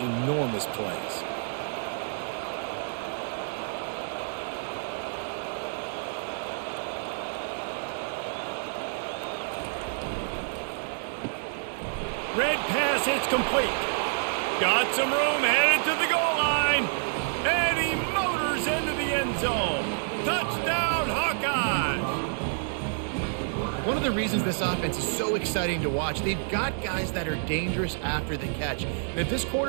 plays. Red pass, it's complete. Got some room, headed to the goal line. And he motors into the end zone. Touchdown, Hawkeyes! One of the reasons this offense is so exciting to watch, they've got guys that are dangerous after the catch. And if this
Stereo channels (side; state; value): left; silent; digital silence